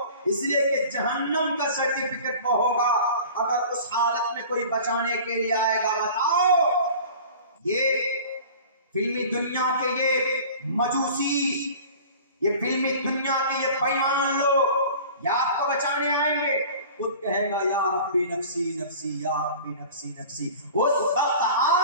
इसलिए कि जहन्नम का सर्टिफिकेट वो होगा। अगर उस हालत में कोई बचाने के लिए आएगा, बताओ, ये फिल्मी दुनिया के ये मजूसी, ये फिल्मी दुनिया के ये बेईमान लोग या आपको बचाने आएंगे? खुद कहेगा या रब्बी नफ्सी नफ्सी, या रब्बी नफ्सी नफ्सी। उस वक्त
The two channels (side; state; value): both; inverted; correlation -0.42